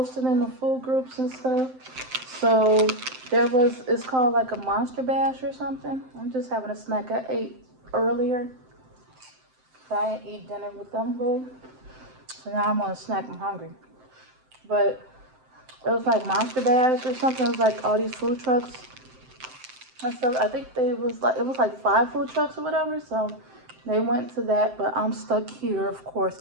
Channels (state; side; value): late; left; 7.8 ms